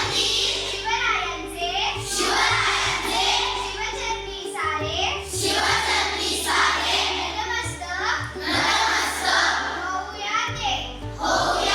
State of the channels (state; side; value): identical; both; correlation 1.00